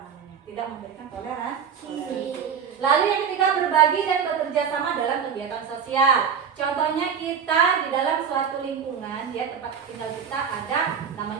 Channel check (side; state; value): left; quieter; 7.2 dB